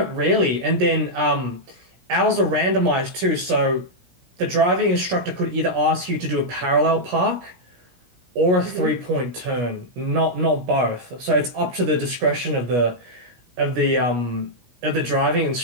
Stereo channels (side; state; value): left; late; 17 ms